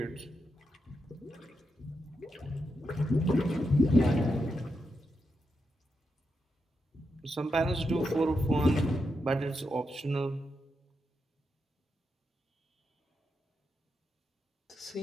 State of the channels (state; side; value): normal; both; correlation 0.85